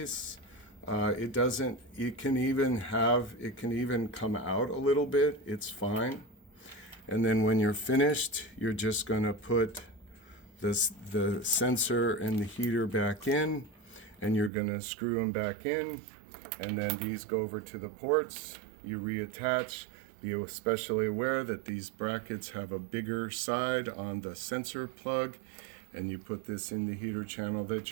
It can even come out a little bit. It's fine. And then when you're finished, you're just going to put the sensor and the heater back in, and you're going to screw them back in, and then these go over to the ports. You reattach. Be especially aware that these brackets have a bigger side on the sensor plug, and you put this in the heater channel that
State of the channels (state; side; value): drops out; left; at 14.5 s